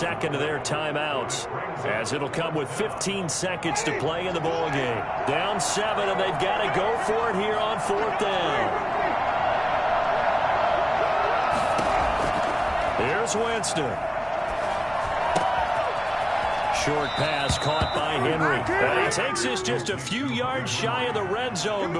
of their timeouts, as it'll come with 15 seconds to play in the ball game. Down 7, and they've got to go for it here on 4th down. Here's Winston. Short pass caught by Henry. And he takes this just a few yards shy of the red zone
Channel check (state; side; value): identical; both; correlation 1.00